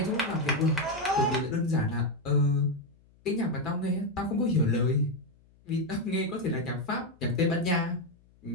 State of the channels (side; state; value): left; noise; hum, 30 dB below the sound